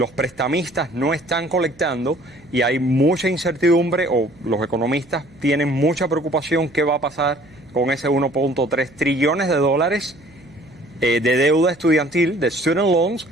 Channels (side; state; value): right; noise; hum, 28 dB below the sound